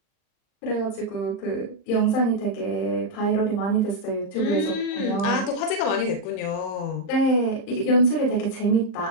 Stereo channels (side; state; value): right; late; 39 ms